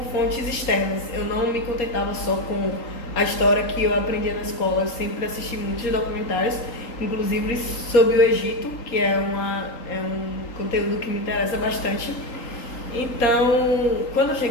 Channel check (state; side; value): late; right; 3.8 ms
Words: fontes externas. Eu não me contentava só com a história que eu aprendia na escola, eu sempre assisti muitos documentários inclusive sobre o Egito, que é um conteúdo que me interessa bastante. Então, quando eu